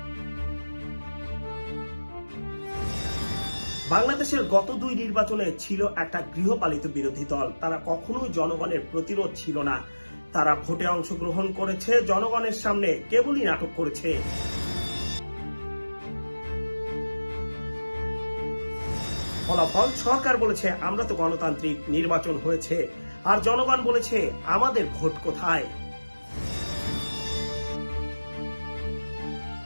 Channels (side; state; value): both; inverted; correlation -1.00